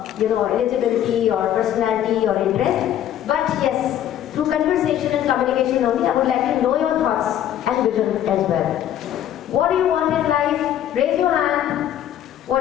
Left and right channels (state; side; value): quieter; right; 11.1 dB